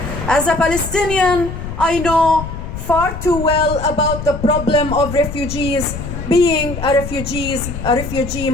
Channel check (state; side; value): noise; left; rumble, 7 dB below the sound